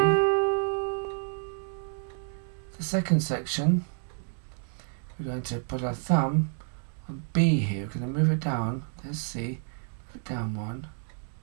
The second section, we're going to put our thumb on B here. We're going to move it down, there's C, move it down 1,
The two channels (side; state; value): left; silent; 58 dB below the other